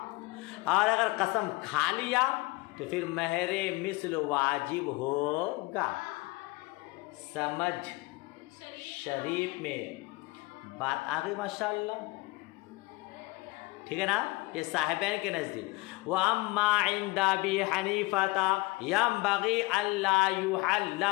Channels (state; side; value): quieter; right; 23.3 dB